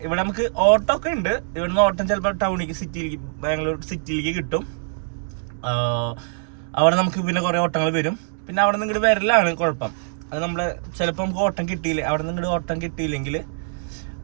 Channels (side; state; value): left; silent; digital silence